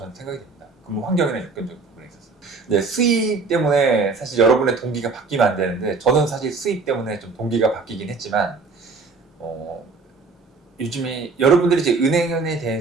생각이 됩니다. 근무 환경이나 여건적 부분에 있어서. 네, 수입 때문에 사실 여러분의 동기가 바뀌면 안 되는데, 저는 사실 수입 때문에 좀 동기가 바뀌긴 했지만, 요즘에 여러분들이 이제 은행에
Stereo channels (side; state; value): left; quieter; 4.3 dB